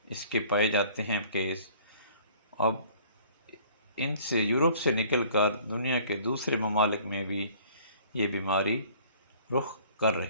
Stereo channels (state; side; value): inverted; both; correlation -0.53